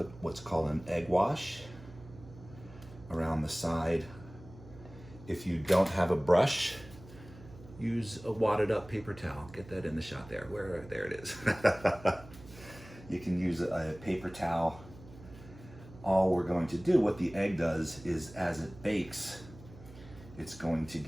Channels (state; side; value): noise; right; hum, 19 dB below the sound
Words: what's called an egg wash around the side. If you don't have a brush, use a wadded up paper towel. Get that in the shot there. There it is. You can use a paper towel. All we're going to do, what the egg does is, as it bakes, it's going to